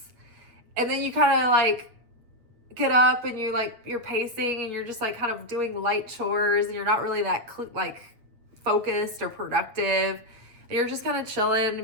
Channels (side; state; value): left; late; 8.8 ms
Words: And then you kind of like get up and you're pacing and you're just like kind of doing light chores and you're not really that like focused or productive. And you're just kind of chilling